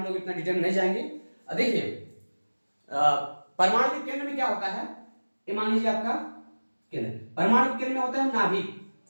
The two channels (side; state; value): both; inverted; correlation -1.00